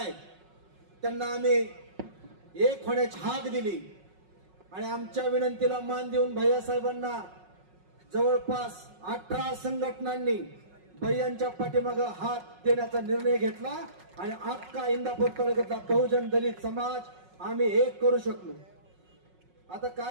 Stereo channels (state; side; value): late; left; 5.4 ms